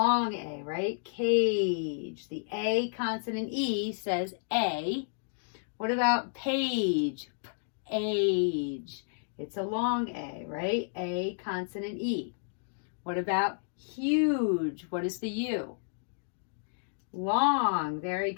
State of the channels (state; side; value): silent; right; digital silence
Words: A, right? Cage. The A consonant E says A. What about page? Age. It's a long A, right? A consonant E. What about huge? What is the U? Long. Very